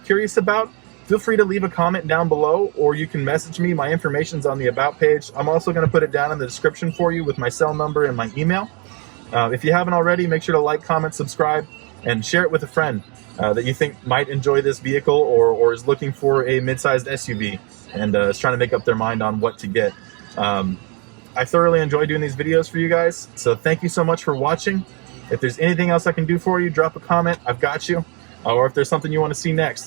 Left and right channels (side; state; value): left; quieter; 32.8 dB